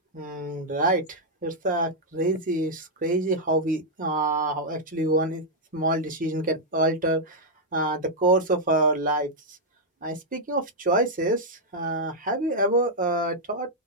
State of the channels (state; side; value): normal; both; correlation -0.04